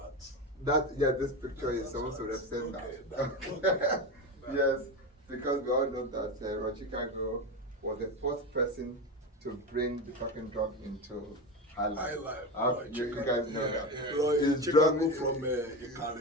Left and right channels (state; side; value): normal; both; correlation 0.19